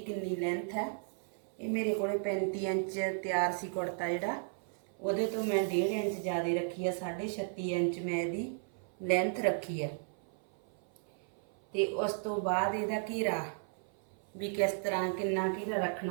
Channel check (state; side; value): silent; left; 55 dB below the other